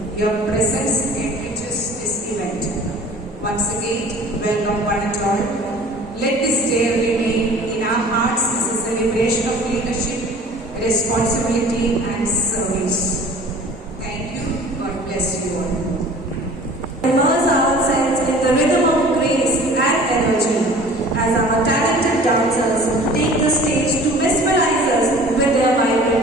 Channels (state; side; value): normal; both; correlation 0.46